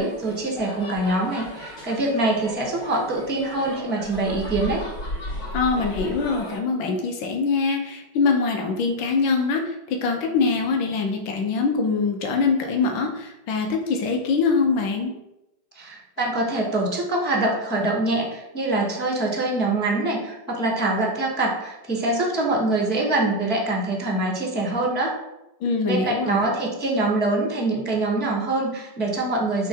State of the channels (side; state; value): right; late; 5.9 ms